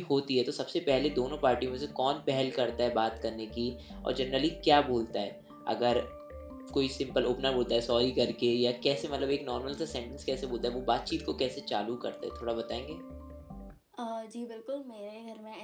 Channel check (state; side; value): identical; both; correlation 1.00